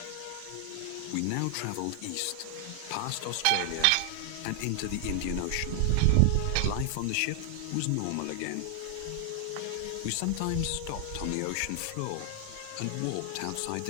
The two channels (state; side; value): different; both; correlation 0.00